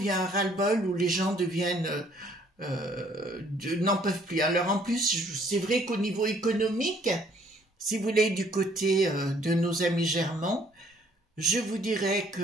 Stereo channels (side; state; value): both; normal; correlation 0.61